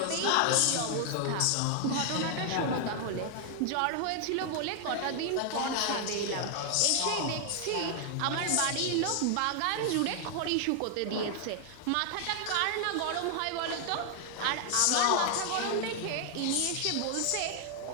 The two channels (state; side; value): different; both; correlation 0.00